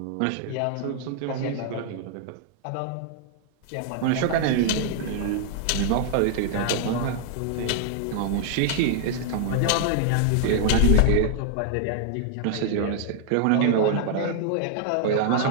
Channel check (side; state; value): both; different; correlation 0.00